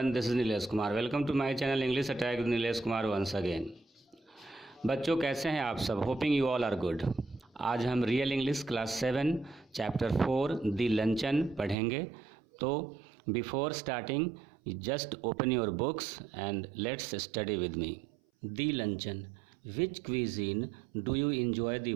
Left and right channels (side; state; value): left; drops out; at 11.8 s